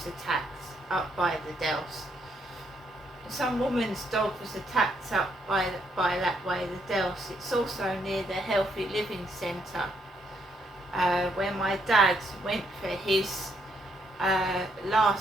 attacked up by the Delce. Some woman's dog was attacked up by that way, the Delce. It's also near the Healthy Living Centre, where my dad went for his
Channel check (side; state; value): both; normal; correlation 0.74